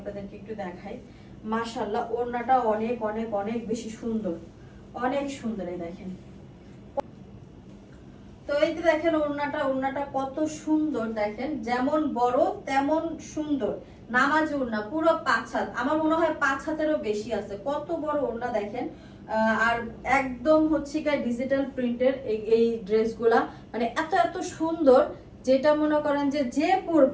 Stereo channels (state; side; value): identical; both; correlation 1.00